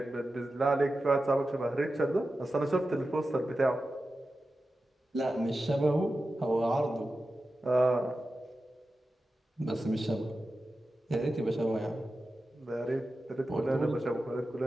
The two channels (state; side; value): normal; both; correlation 0.92